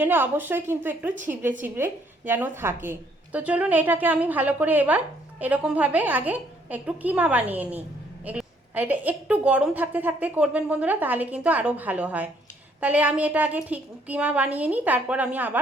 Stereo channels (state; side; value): normal; both; correlation 0.67